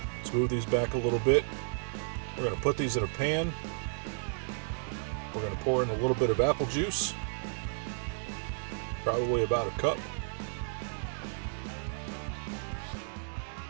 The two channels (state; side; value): silent; left; digital silence